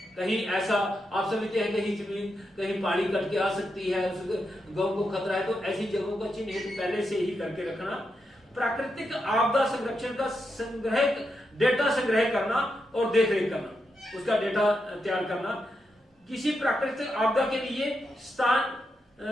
कहीं ऐसा आप समझते हैं कहीं जमीन, कहीं पहाड़ी कट के आ सकती है, उस गांव को खतरा है, तो ऐसी जगहों का चिन्हित पहले से ही करके रखना। प्राकृतिक आपदा संरक्षण का संग्रह, डेटा संग्रह करना और देखरेख करना, उसका डेटा तैयार करना। किसी प्राकृतिक आपदा के लिए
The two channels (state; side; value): normal; both; correlation 0.85